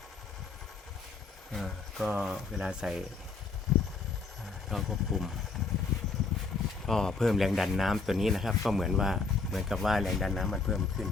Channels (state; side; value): quieter; right; 4.3 dB